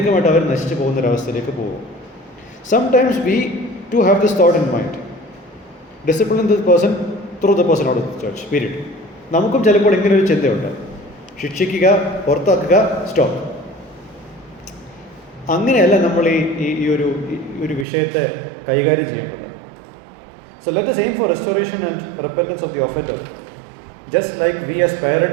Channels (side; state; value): left; drops out; at 17.9 s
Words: അവർ നശിച്ചു പോകുന്നൊരവസ്ഥയിലേക്ക് പോകും. Sometimes we too have this thought in mind, discipline this person through the person out of the church, period. നമുക്കും ചിലപ്പോൾ ഇങ്ങനെ ഒരു ചിന്തയുണ്ട്, ശിക്ഷിക്കുക, പുറത്താക്കുക, സ്റ്റോപ്പ്. അങ്ങനെയല്ല നമ്മൾ ഈ ഒരു വിഷയത്തെ കൈകാര്യം ചെയ്യേണ്ടത്. So let us aim for restoration and repentance of the offender, just like we as